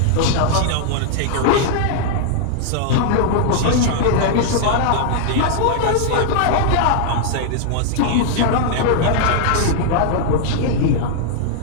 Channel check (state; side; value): different; both; correlation -0.01